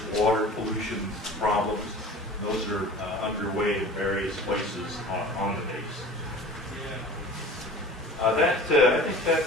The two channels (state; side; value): normal; both; correlation 0.40